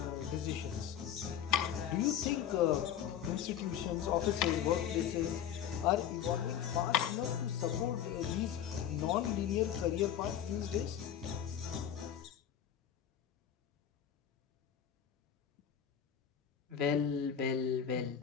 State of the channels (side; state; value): right; quieter; 9.4 dB